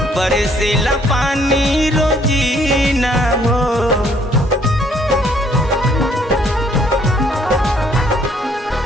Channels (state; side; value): normal; both; correlation 0.64